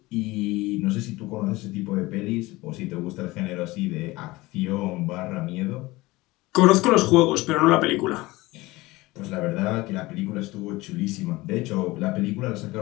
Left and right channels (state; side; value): quieter; right; 20.5 dB